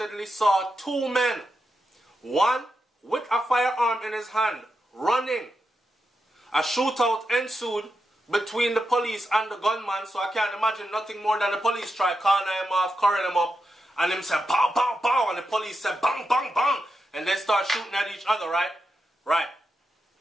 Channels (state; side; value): normal; both; correlation 0.87